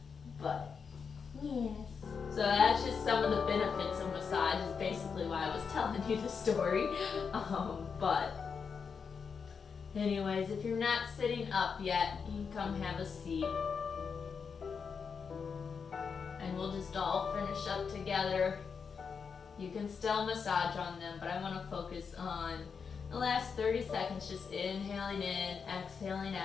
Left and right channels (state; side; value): quieter; right; 5.9 dB